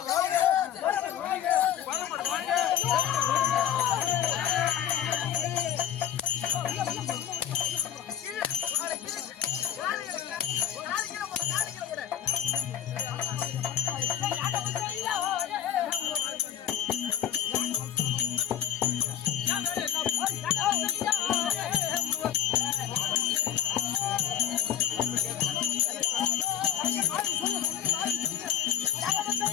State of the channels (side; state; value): right; quieter; 10.2 dB